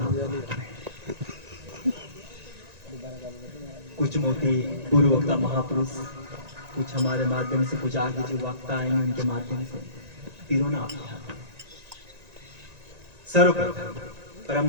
कुछ मोती पूर्व वक्ता महापुरुष, कुछ हमारे माध्यम से, कुछ आगे जो वक्ता आएंगे उनके माध्यम से पिरोना आप सर्वप्रथम परम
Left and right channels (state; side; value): late; left; 1.9 ms